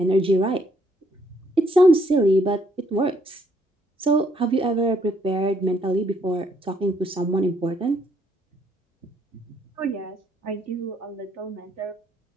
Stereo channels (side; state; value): both; normal; correlation 0.69